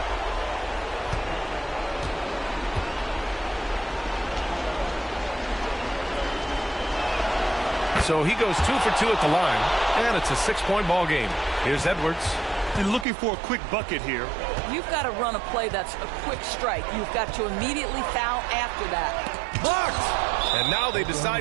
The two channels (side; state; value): left; drops out; at 13.1 s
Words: So he goes 2 for 2 at the line, and it's a 6-point ball game. Here's Edwards. And looking for a quick bucket here. You've got to run a play that's a quick strike. You've got to immediately foul after that. Blocked! And now they